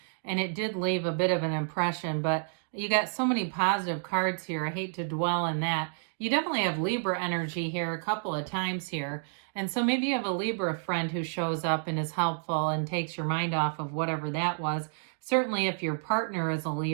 and it did leave a bit of an impression, but you got so many positive cards here. I hate to dwell in that. You definitely have Libra energy here a couple of times here. And so maybe you have a Libra friend who shows up and is helpful and takes your mind off of whatever that was. Certainly if your partner is a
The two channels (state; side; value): silent; left; digital silence